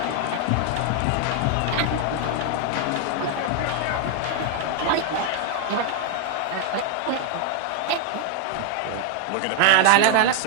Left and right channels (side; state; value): both; different; correlation 0.00